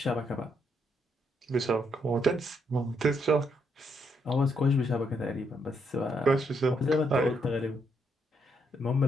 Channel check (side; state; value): both; normal; correlation 0.76